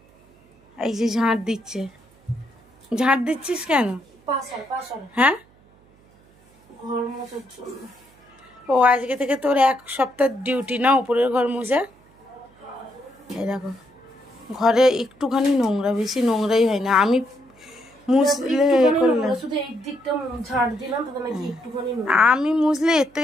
এই যে ঝাঁট দিচ্ছে। ঝাঁট দিচ্ছিস কেন? হ্যাঁ ঘর মোছার জন্য। ও আজকে থেকে তোর 1 সপ্তাহ ডিউটি না উপরের ঘর মোছা। এই দেখো ঘরে একটুখানি নোংরা, বেশি নোংরাই হয় না। আমি মুছলে আমি মুছলে এর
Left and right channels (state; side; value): noise; right; hum, 30 dB below the sound